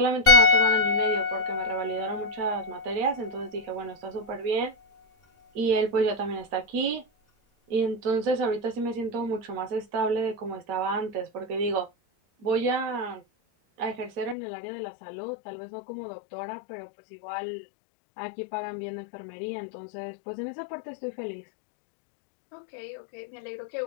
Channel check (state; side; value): drops out; right; at 14.4 s